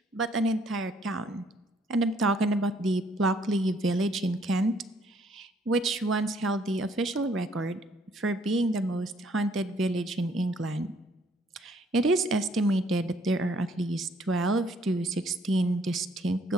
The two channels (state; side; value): normal; both; correlation 0.65